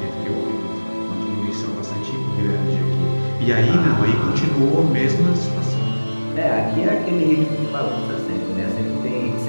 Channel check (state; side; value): inverted; both; correlation -1.00